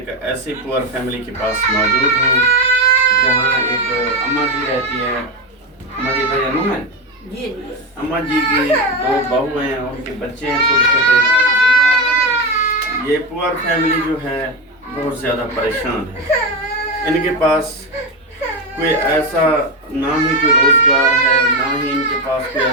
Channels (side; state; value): both; normal; correlation 0.14